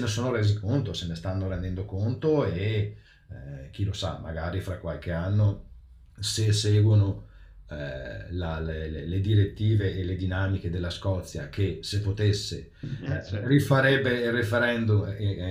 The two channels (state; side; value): identical; both; correlation 1.00